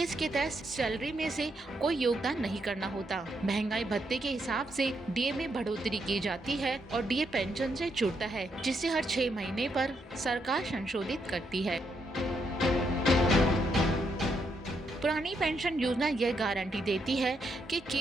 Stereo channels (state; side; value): normal; both; correlation 0.78